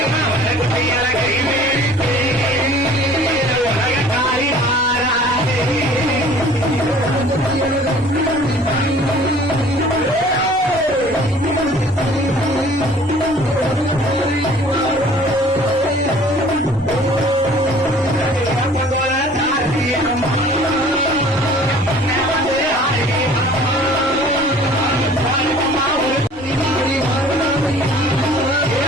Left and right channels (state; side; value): normal; both; correlation 0.50